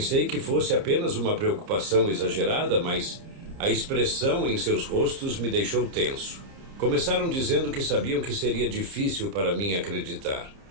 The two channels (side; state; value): left; late; 30 ms